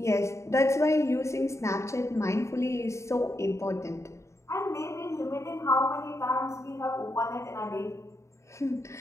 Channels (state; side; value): late; right; 0.14 ms